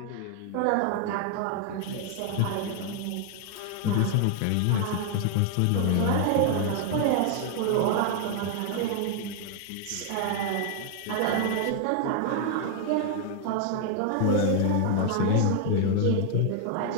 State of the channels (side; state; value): both; different; correlation 0.00